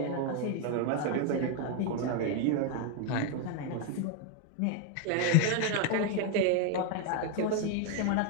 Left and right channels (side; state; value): both; different; correlation 0.01